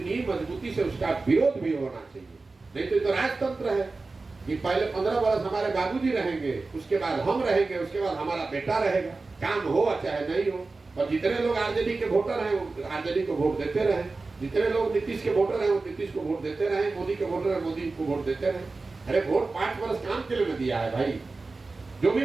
ही मजबूती से उसका विरोध भी होना चाहिए। नहीं तो ये तो राजतंत्र है कि पहले 15 वर्ष हमारे बाबूजी रहेंगे, उसके बाद हम रहेंगे, उसके बाद हमारा बेटा रहेगा, काम हो चाहे नहीं हो। और जितने लोग आरजेडी के वोटर हैं वो आरजेडी को वोट देते रहे, जितने लोग नीतीश के वोटर हैं वो नीतीश को वोट देते रहे, मोदी के वोटर हैं मोदी को वोट देते रहे। अरे वोट 5 वर्ष काम के लिए दिया है भाई, जो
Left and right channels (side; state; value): left; quieter; 3.7 dB